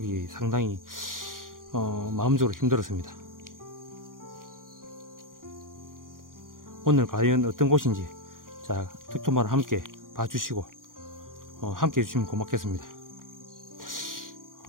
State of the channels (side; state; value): left; late; 0.90 ms